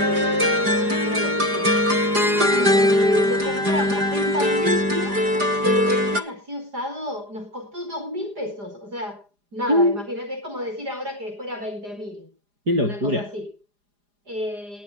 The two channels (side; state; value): left; late; 4.9 ms